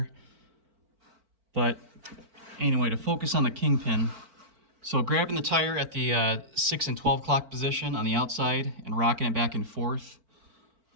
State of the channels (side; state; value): left; late; 4.4 ms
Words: But anyway, to focus on the kingpin, so grabbing the tire at the 6 and 12 o'clock position on the outside and rocking it back and forth,